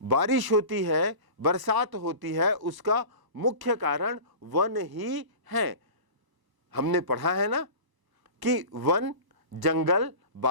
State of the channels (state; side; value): late; left; 1.0 ms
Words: बारिश होती है, बरसात होती है, उसका मुख्य कारण वन ही है। हमने पढ़ा है ना कि वन, जंगल